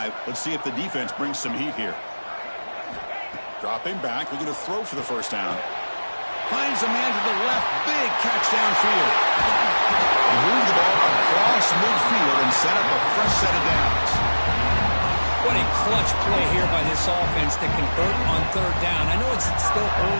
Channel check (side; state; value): both; inverted; correlation -1.00